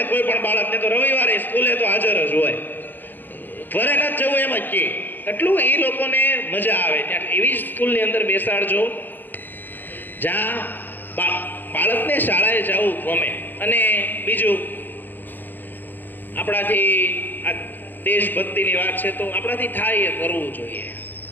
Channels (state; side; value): late; right; 0.089 ms